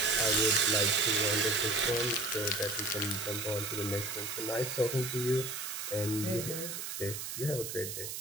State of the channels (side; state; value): right; noise; hiss, 6 dB below the sound